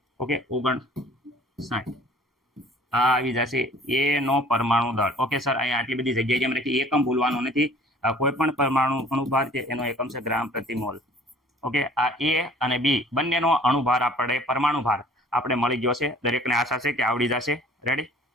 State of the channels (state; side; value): normal; both; correlation 0.51